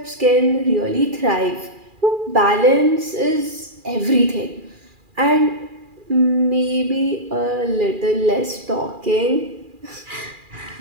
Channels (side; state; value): left; late; 2.4 ms